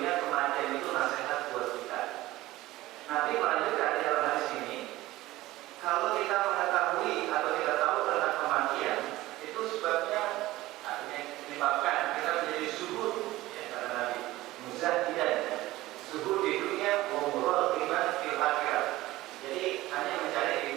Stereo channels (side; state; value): left; quieter; 17.4 dB